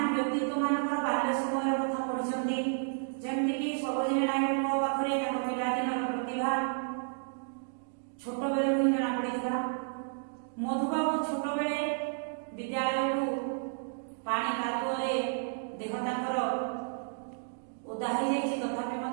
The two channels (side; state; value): left; silent; digital silence